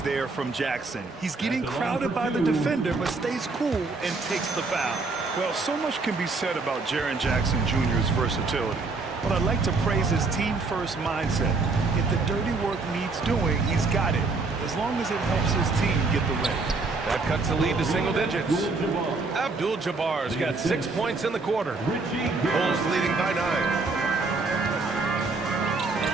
there from Jackson. He's getting crowded by the defender, but stays cool and takes the foul. Well, so much can be said about Jaren Jackson Jr.'s versatility. But I'd like to praise his team-first mindset. If the dirty work needs doing, he's got it. As long as it helps his team get the win. That cuts the lead to single digits. Abdul-Jabbar's got 6 points in the quarter. Bulls leading by 9.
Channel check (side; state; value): left; quieter; 3.8 dB